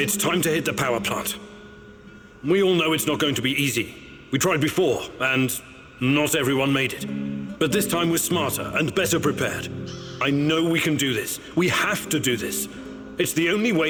time to hit the power plant. We all know it's not going to be easy. We tried before, and not everyone made it. But this time we're smarter and better prepared. I know we can do this. We have to do this. It's the only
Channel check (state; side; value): identical; both; correlation 1.00